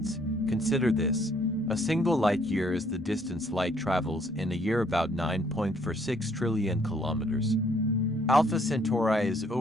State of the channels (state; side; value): normal; both; correlation 0.65